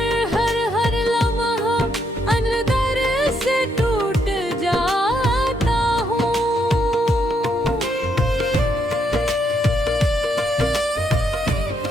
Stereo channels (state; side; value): normal; both; correlation 0.76